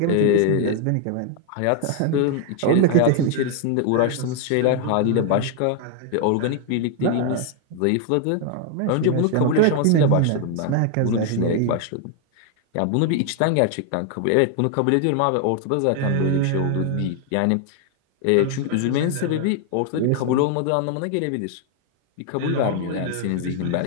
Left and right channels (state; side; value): different; both; correlation 0.00